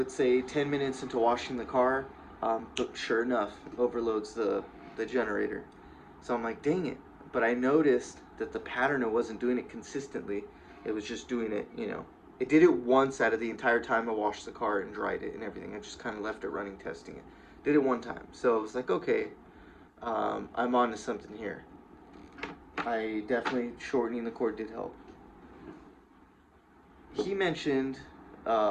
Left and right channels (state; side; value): identical; both; correlation 1.00